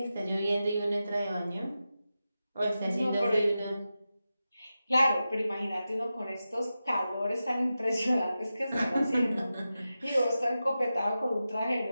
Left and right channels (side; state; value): both; inverted; correlation -0.92